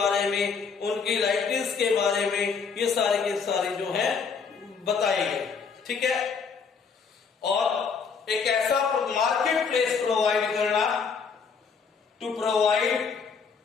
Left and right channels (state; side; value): quieter; right; 5.7 dB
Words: में, उनकी लाइबिलिटीज के बारे में, ये सारे के सारे जो है बताए गए। ठीक है। और एक ऐसा मार्केट प्लेस प्रोवाइड करना, to provide